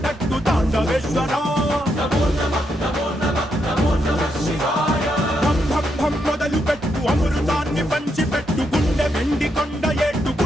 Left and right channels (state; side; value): normal; both; correlation 0.80